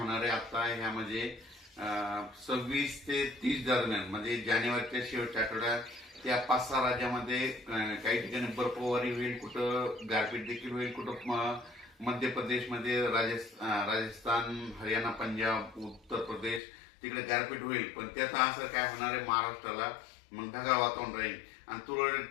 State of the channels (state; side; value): drops out; right; at 16.6 s